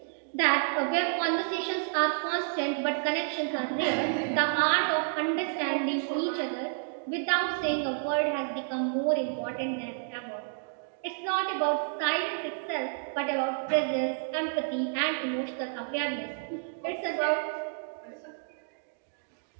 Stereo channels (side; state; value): left; silent; digital silence